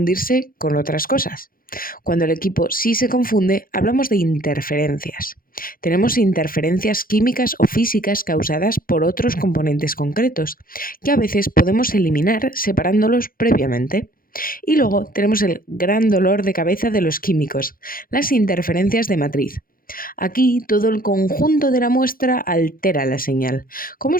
con otras cosas. Cuando el equipo sí se confunde, hablamos de interferencias. Tenemos interferencias químicas o físicas causadas por otros componentes concretos, que a veces podemos eliminar separándolos previamente. Y luego tenemos el gran dolor de cabeza de los químicos, las interferencias de matriz. Aquí todo el conjunto de la muestra altera la señal. ¿Cómo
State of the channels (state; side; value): late; right; 0.41 ms